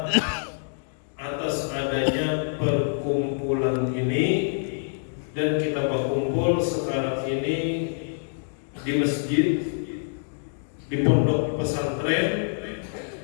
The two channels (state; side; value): silent; right; digital silence